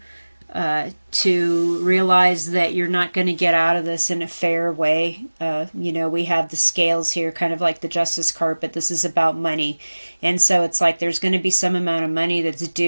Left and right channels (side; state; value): both; inverted; correlation -1.00